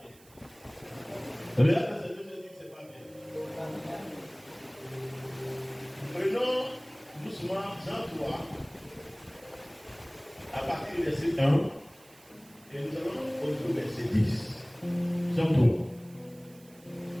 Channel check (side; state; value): right; noise; hiss, 25 dB below the sound